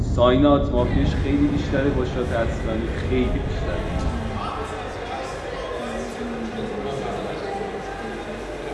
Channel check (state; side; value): identical; both; correlation 1.00